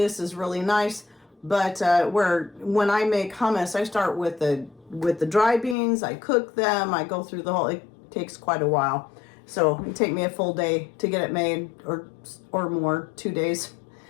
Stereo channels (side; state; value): right; drops out; at 5.8 s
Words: is really nice. But when I make hummus, I start with the dry beans. I cook them. I go through the whole. It takes quite a while, so it take me a full day to get it made, or more, 2 days.